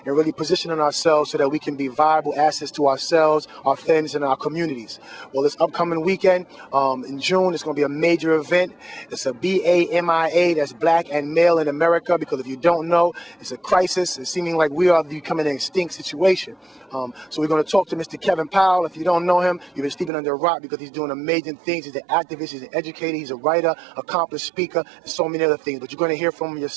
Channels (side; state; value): left; drops out; at 20.1 s